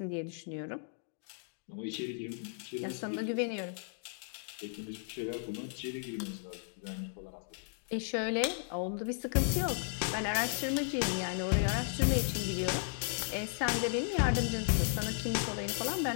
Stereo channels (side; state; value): right; silent; 54 dB below the other